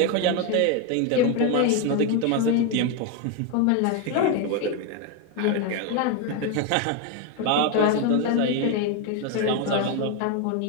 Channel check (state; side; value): different; both; correlation 0.02